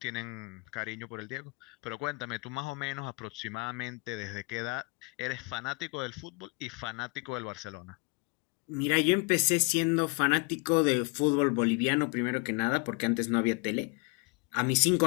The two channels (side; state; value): right; quieter; 31.0 dB